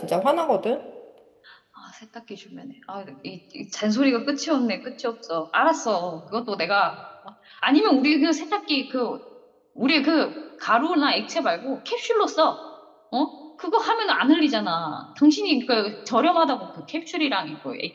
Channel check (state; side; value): identical; both; correlation 1.00